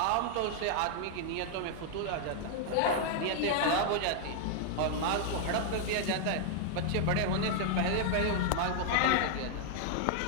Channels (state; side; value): different; both; correlation 0.00